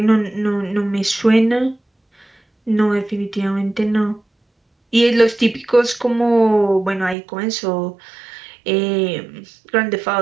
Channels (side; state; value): left; drops out; at 7.2 s